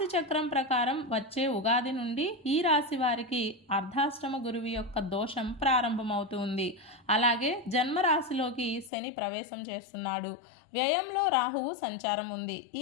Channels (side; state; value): right; drops out; at 8.9 s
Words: చక్రం ప్రకారం వచ్చే ఉగాది నుండి ఈ రాశి వారికి అర్ధాష్టమ గురువు యొక్క దోషం ప్రారంభమవుతుంది. అలాగే జన్మరాశిలోకి శని ప్రవేశం చేస్తున్నాడు. వ్యయంలో రాహువు సంచారం ఉంది.